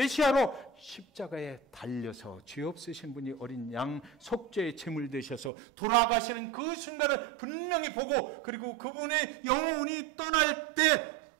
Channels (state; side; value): drops out; left; at 5.5 s